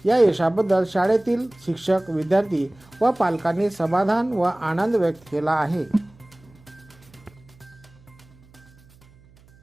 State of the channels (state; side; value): noise; right; hum, 27 dB below the sound